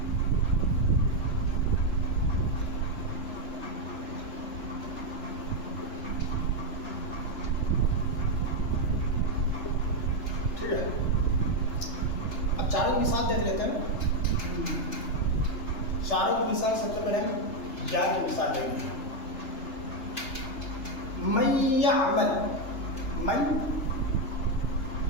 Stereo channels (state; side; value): late; right; 3.3 ms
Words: ٹھیک ہے اب چاروں کی مثال دیکھ لیتے ہیں چاروں کی مثال سب سے پہلے ہم یا کی مثال دیں گے من یعمل من